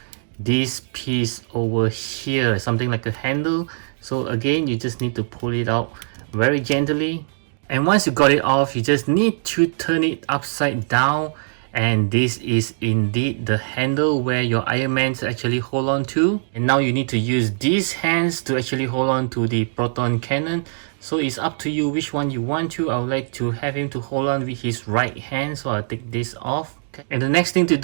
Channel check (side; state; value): left; silent; digital silence